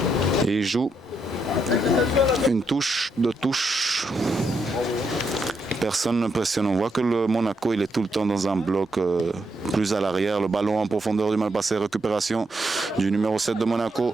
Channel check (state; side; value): normal; both; correlation 0.79